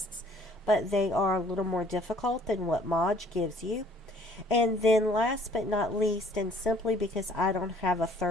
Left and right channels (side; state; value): both; normal; correlation 0.58